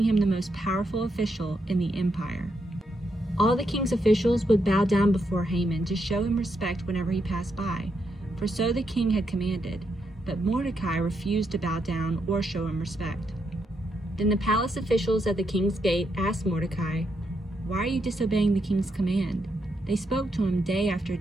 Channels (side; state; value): both; normal; correlation 0.80